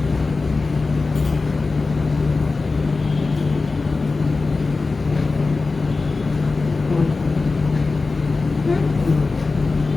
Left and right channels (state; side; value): quieter; right; 3.8 dB